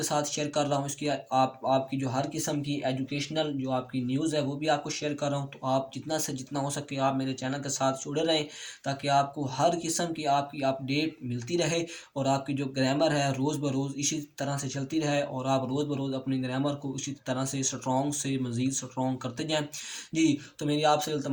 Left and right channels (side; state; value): both; identical; correlation 1.00